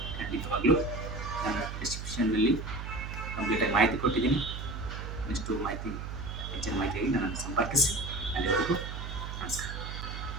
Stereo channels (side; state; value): right; noise; hum, 7 dB below the sound